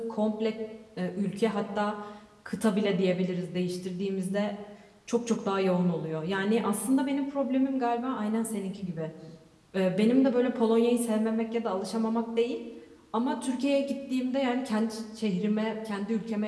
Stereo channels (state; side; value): identical; both; correlation 1.00